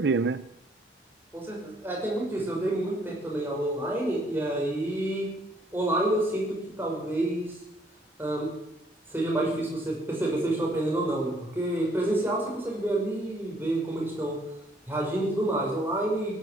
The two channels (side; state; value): both; normal; correlation 0.65